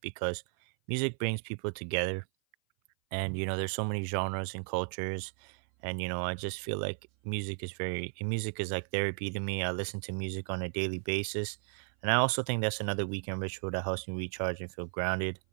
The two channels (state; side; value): silent; left; 55 dB below the other